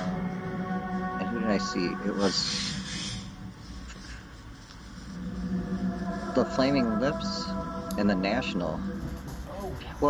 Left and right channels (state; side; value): identical; both; correlation 1.00